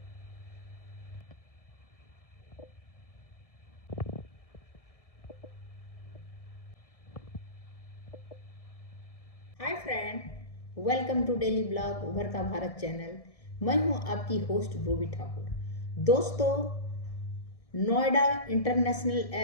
friend, welcome to daily blog Ubharta Bharat channel. मैं हूं आपकी होस्ट रूबी ठाकुर। दोस्तों, नोएडा इंटरनेशनल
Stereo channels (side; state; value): right; late; 1.6 ms